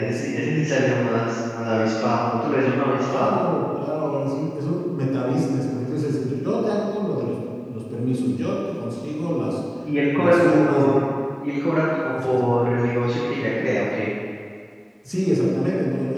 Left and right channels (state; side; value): identical; both; correlation 1.00